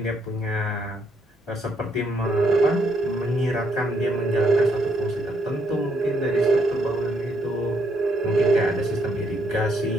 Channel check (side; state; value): both; normal; correlation 0.73